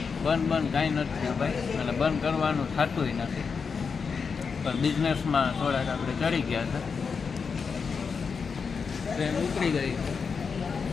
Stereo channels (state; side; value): quieter; right; 5.6 dB